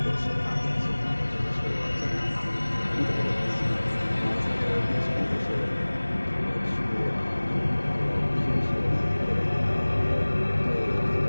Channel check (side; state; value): both; inverted; correlation -1.00